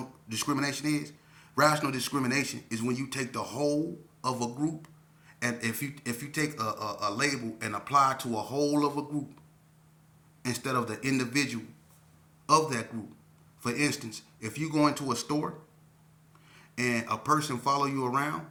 discrimination is? Rational discrimination is when you take the whole of a group, and if you take a label and apply to a whole of a group instead of the individual of that group. For instance, if you go into a store and a person follow you around,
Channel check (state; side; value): identical; both; correlation 1.00